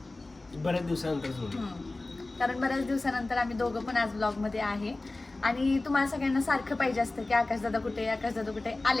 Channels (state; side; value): quieter; right; 3.0 dB